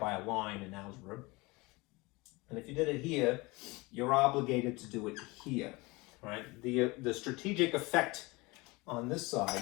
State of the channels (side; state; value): right; quieter; 24.1 dB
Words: a line in algebra. And if you did it here, you're obligated to do it here, right? The strategic effect on this